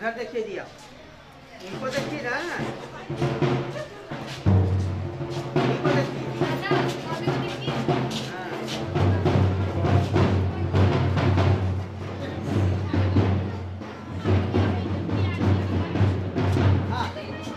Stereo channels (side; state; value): both; identical; correlation 1.00